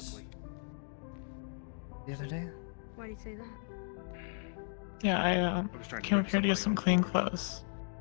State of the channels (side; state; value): right; silent; 54 dB below the other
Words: the other day? Why do you say that? Yeah, I was trying to came bring up here to get some somebody on clean board. clothes.